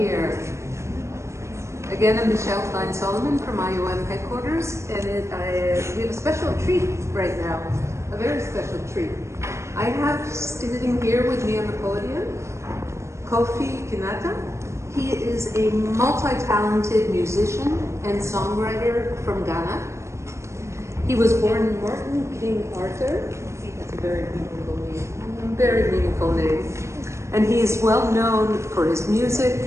Again, I'm Michelle Klein-Solomon from IOM headquarters, and we have a special treat right now, a very special treat. I have sitting here with me on the podium, Kofi Kinaata. He is a multi-talented musician and songwriter from Ghana. He was born in Martin King Arthur. That's a very meaningful name. And he is well known for his music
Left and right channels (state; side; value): late; left; 0.14 ms